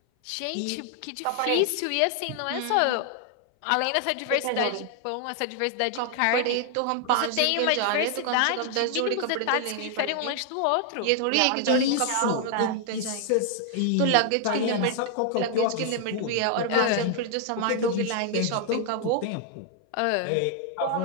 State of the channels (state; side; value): different; both; correlation 0.00